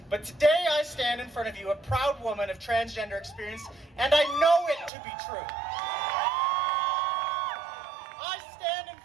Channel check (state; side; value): drops out; left; at 4.9 s